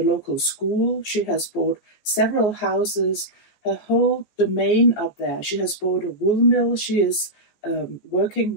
local school. She has bought several houses, her whole domain up there. She has bought a wool mill she is working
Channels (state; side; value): late; right; 14 ms